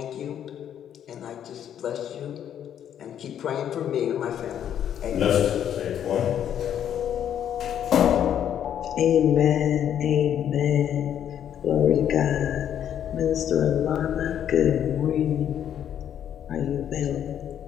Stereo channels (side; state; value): right; quieter; 9.7 dB